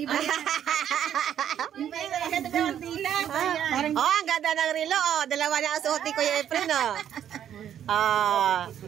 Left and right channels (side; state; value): left; quieter; 9.9 dB